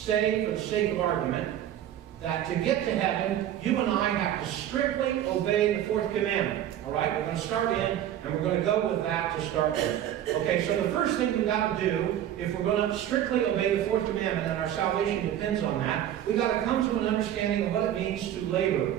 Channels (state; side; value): quieter; left; 11.3 dB